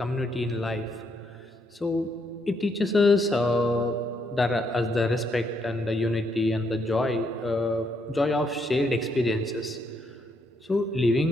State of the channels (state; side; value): normal; both; correlation 0.75